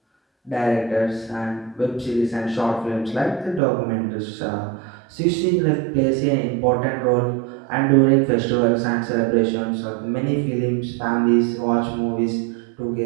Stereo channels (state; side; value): drops out; left; at 3.6 s